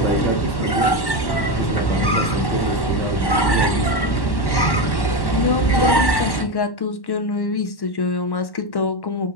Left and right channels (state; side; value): late; right; 1.1 ms